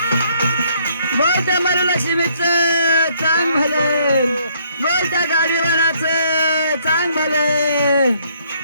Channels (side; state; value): both; inverted; correlation -0.66